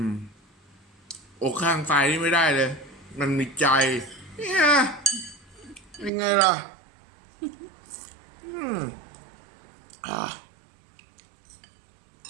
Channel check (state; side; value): drops out; left; at 6.1 s